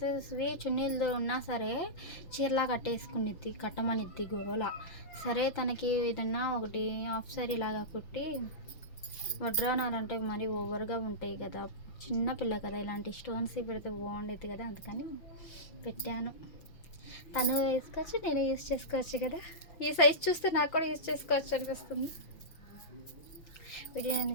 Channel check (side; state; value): right; late; 5.9 ms